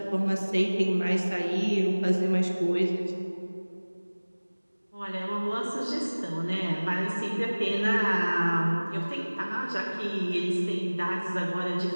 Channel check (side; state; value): both; inverted; correlation -1.00